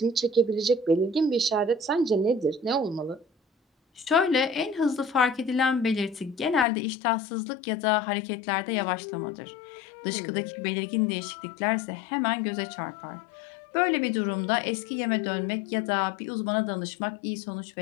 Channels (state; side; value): drops out; right; at 6.7 s